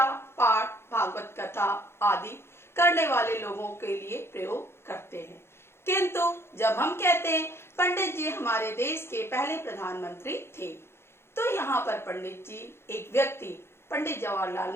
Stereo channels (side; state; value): right; late; 0.12 ms